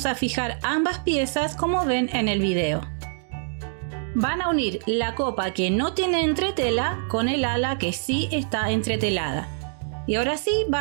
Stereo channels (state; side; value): silent; left; digital silence